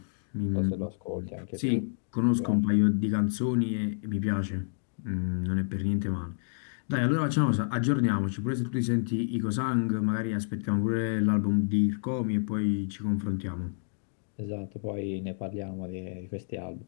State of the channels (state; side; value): silent; right; digital silence